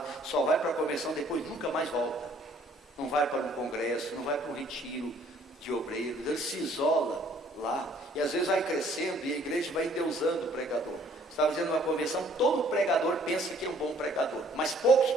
só vai para a convenção, depois nunca mais volta. Não vai para um congresso, não vai para um retiro de obreiros, ele se isola lá, e às vezes vai crescendo e a igreja vai endeusando o pregador. Estava dizendo numa convenção, todo pregador pensa que é um bom pregador, mas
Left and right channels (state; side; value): normal; both; correlation 0.60